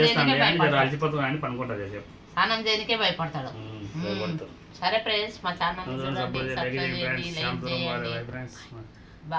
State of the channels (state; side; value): identical; both; correlation 1.00